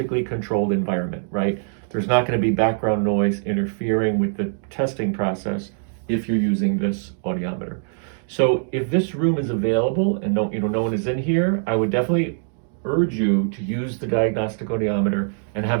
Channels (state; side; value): silent; left; 64 dB below the other